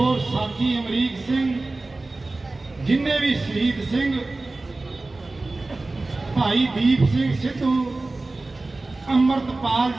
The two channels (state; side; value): quieter; left; 3.2 dB